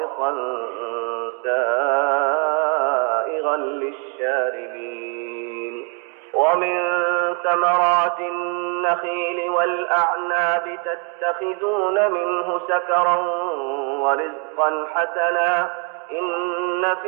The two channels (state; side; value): quieter; left; 35.4 dB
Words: سائغا للشاربين ومن ثمرات النخيل والأعناب تتخذون منه سكرا ورزقا حسنا إن